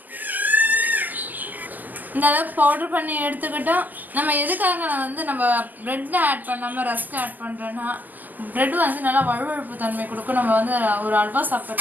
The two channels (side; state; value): left; late; 0.084 ms